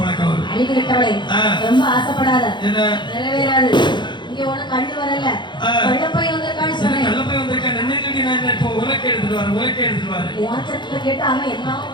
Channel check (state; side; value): late; right; 0.22 ms